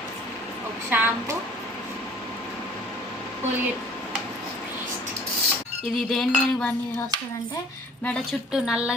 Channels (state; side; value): normal; both; correlation 0.51